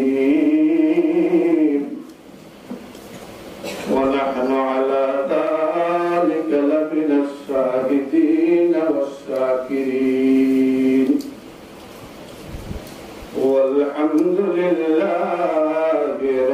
ওয়া নাহনু আলা যালিকা লামিনাশ শাহিদিন ওয়াশ-শাকিরিন ওয়ালহামদুলিল্লাহি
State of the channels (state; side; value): identical; both; correlation 1.00